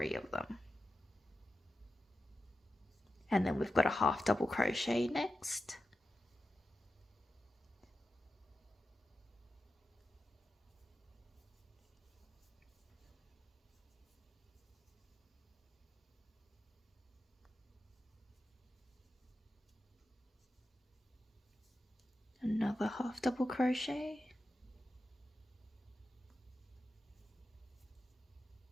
of them. And then we've got a half double crochet next. Another half double crochet.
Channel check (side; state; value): both; normal; correlation 0.91